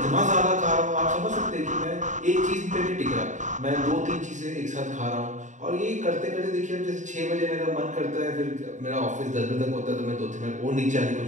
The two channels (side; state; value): left; late; 0.36 ms